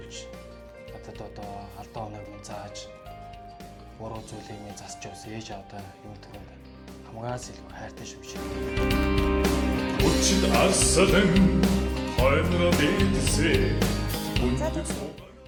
надад одоо алдаа оноог минь зааж буруу зүйлийг минь засч явсан ээж авдаа юм түрүүнд хамгаас илүү хайртай шүү шиг. Өчид арслан хойноо дээдсээ.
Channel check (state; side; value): identical; both; correlation 1.00